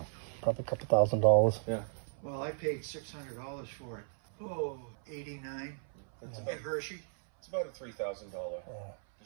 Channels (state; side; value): silent; left; 54 dB below the other